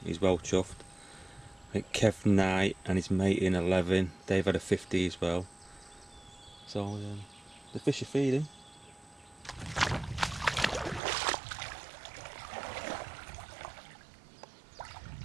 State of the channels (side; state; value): left; drops out; at 11.0 s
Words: He's well chuffed. I think Kev Knight and his mate in 11, they've had a 50 as well. So the fish are feeding.